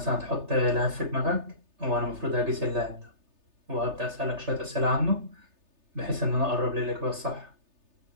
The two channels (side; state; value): left; late; 3.3 ms